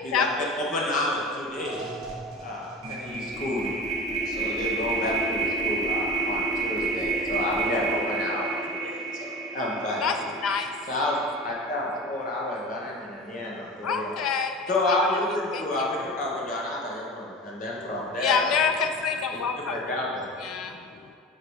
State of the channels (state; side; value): normal; both; correlation 0.33